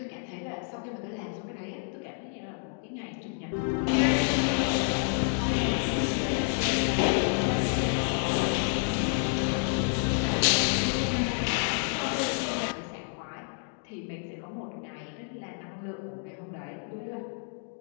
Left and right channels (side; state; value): right; silent; 58 dB below the other